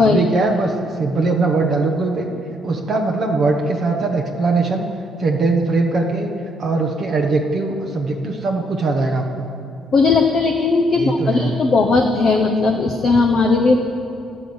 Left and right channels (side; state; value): both; normal; correlation 0.71